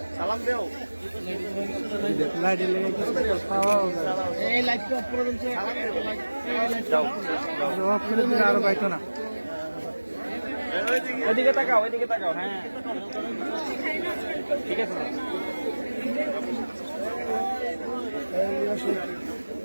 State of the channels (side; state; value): both; inverted; correlation -1.00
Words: সালাম দেও। আরো পাইতো না, ওইদিকে তাকাও, ওইদিকে তাকাও। হ্যাঁ ঠিক আছে।